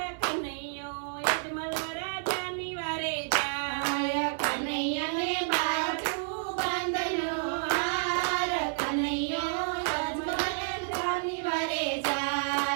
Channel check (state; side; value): silent; left; 58 dB below the other